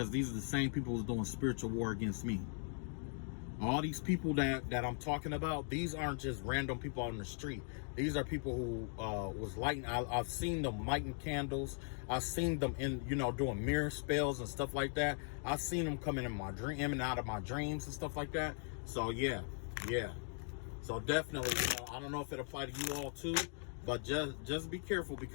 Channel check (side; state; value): right; silent; 52 dB below the other